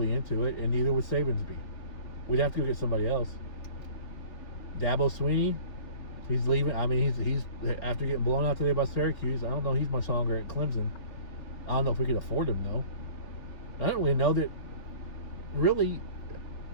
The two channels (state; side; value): late; right; 4.3 ms